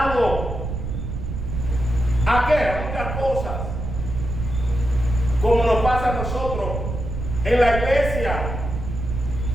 ¿A qué? A muchas cosas. Como nos pasa a nosotros, en la iglesia.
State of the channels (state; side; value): noise; right; rumble, 4 dB below the sound